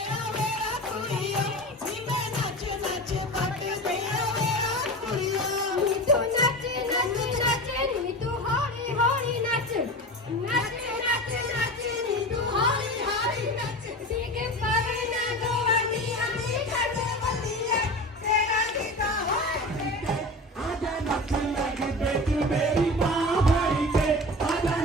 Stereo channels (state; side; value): normal; both; correlation 0.30